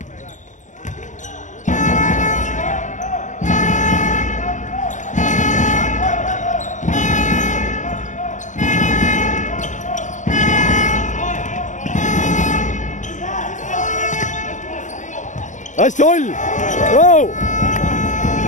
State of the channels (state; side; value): late; right; 0.36 ms